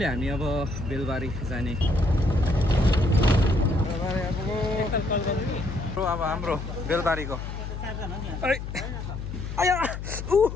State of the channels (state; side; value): noise; left; hum, 7 dB below the sound